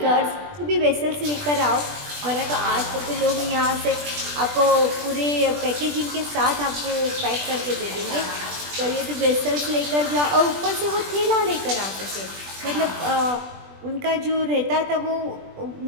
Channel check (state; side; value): late; left; 20 ms